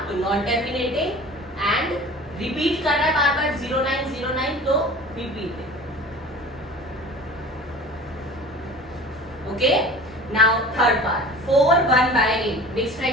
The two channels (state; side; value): normal; both; correlation 0.41